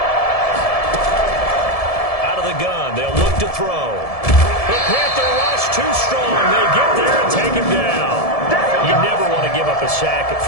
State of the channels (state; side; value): late; right; 1.7 ms